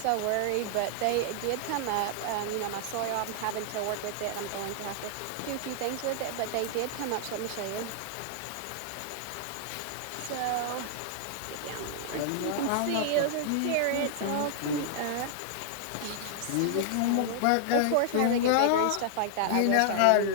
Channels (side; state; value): both; different; correlation -0.01